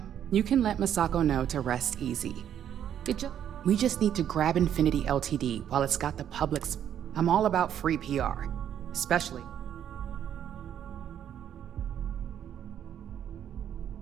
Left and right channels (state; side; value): quieter; left; 9.8 dB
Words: you can let Masako know to rest easy. We just need to grab Infinity Ltd while it's got the public's... I'm all about free PR, especially...